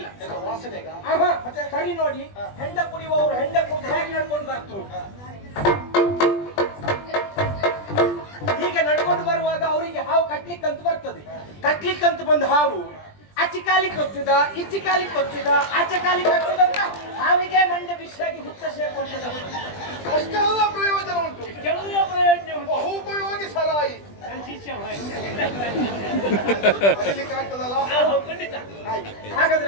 ಮತ್ತೆ ಸರಿ ನೋಡಿ, ಹೆಂಡ ಕುಡಿಯುವವರು ಹೆಂಡ ಕುಡಿದು ಹೇಗೆ ನಡ್ಕೊಂಡು ಬರ್ತರು. ಹೀಗೆ ನಡ್ಕೊಂಡು ಬರುವಾಗ ಅವರಿಗೆ ಹಾವು ಕಟ್ಲಿಕ್ಕಂತ ಬರ್ತದೆ. ಕಟ್ಲಿಕ್ಕಂತ ಬಂದ ಹಾವು ಆಚೆ ಕಾಲಿ ಕೊಚ್ಚುದ, ಈಚೆ ಕಾಲಿ ಕೊಚ್ಚುದ, ಆಚೆ ಕಾಲಿ ಕೊಚ್ಚುದಂತ ಹಾವಿಗೆ ಮಂಡೆ ಬಿಸಿಯಾಗಿ ಹುತ್ತ ಸೇರ್ಕೊಂಡದ. ಅಷ್ಟೆಲ್ಲ ಪ್ರಯೋಜನ ಉಂಟು. ಎಲ್ಲ ಪ್ರಯೋಜನ ಉಂಟು. ಬಹು ಉಪಯೋಗಿ ಸರಾಯಿ. ನನ್ನ ಶಿಷ್ಯ ಮರಿಲಿಕ್ಕಾಗ್ತದಲ್ಲ? ಖಂಡಿತ.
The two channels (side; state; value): right; late; 20 ms